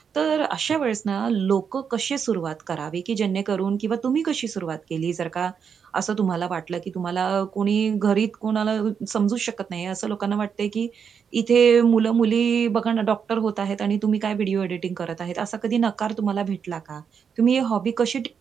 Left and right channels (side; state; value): left; quieter; 6.8 dB